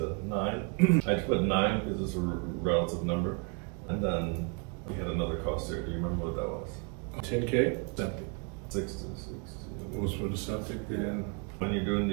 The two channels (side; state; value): left; quieter; 35.7 dB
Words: 9. I just put 9 because it's a relative number. And then we had another cost there. Do you remember what that was? 10K? Septic. 6 to 16. What was for the septic? When you're doing